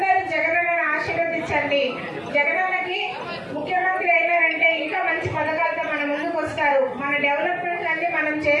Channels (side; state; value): both; identical; correlation 1.00